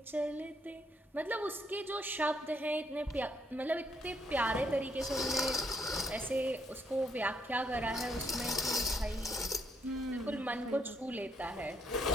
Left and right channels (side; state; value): both; normal; correlation 0.72